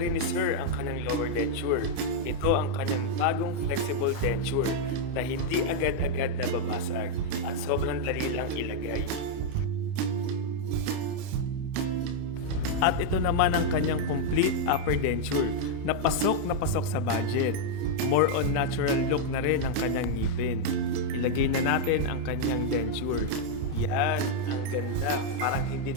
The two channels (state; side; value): late; left; 29 ms